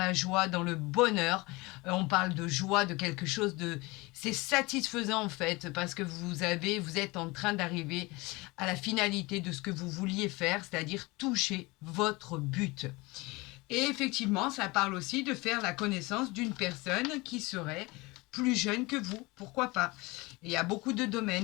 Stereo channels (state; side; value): quieter; right; 23.7 dB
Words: joie, dans le bonheur. On parle de joie, de quelque chose de... C'est satisfaisant en fait, parce que vous êtes en train d'arriver à la finalité de ce que vous vouliez faire, c'est-à-dire toucher votre but. Et effectivement, ça parle aussi de faire la connaissance d'une personne qui serait plus jeune que vous, pourquoi pas. Il y a beaucoup de